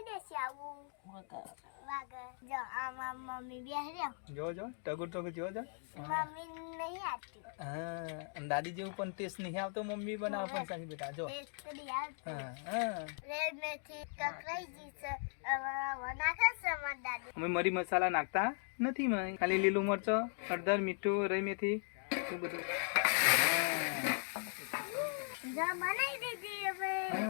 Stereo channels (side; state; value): right; silent; 52 dB below the other